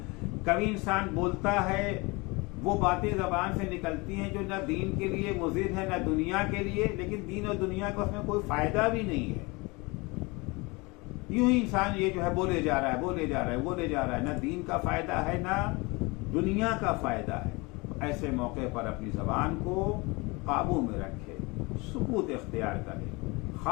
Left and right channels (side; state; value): right; quieter; 25.9 dB